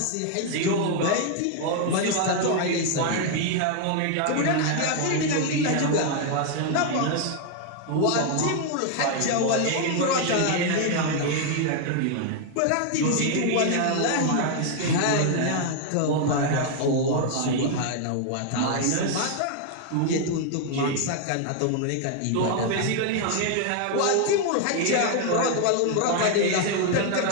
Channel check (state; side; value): different; both; correlation 0.00